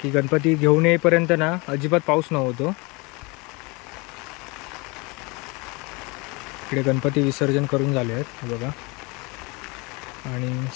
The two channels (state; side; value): quieter; right; 27.3 dB